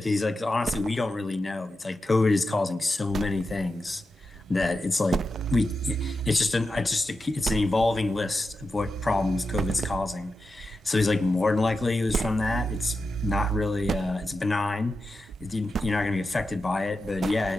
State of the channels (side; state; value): both; normal; correlation 0.90